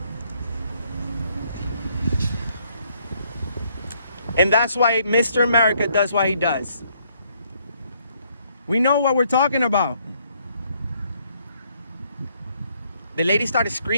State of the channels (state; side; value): inverted; both; correlation -0.69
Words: And that's why Mr. America does what he does. We know what we're talking about. The lady started